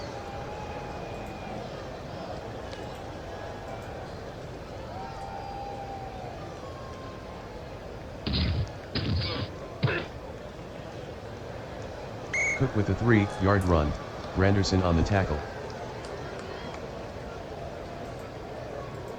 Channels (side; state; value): both; identical; correlation 1.00